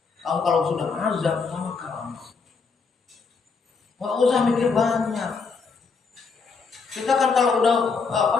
Kalau sudah azam, tawakkal 'ala Allah. Enggak usah mikir banyak. Kita kan kalau udah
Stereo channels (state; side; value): quieter; right; 4.9 dB